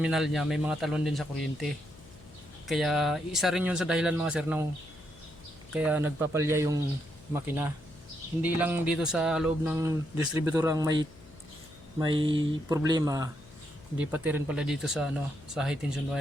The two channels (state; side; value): noise; left; hum, 22 dB below the sound